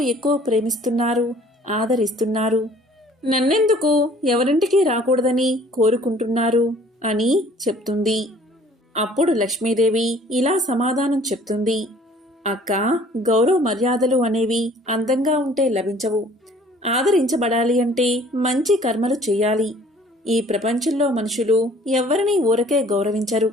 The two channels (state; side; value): normal; both; correlation 0.54